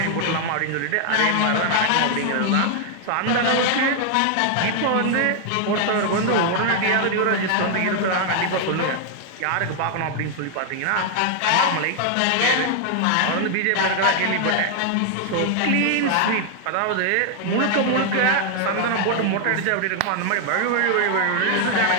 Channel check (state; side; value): different; both; correlation 0.00